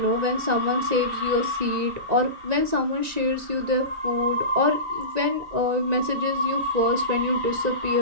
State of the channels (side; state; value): left; late; 1.9 ms